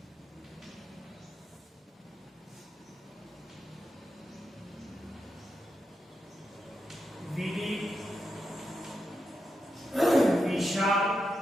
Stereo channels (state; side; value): normal; both; correlation 0.87